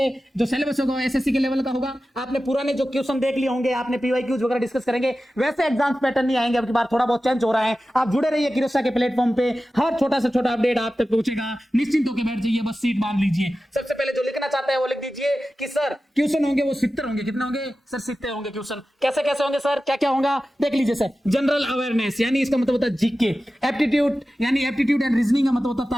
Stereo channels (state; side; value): normal; both; correlation 0.94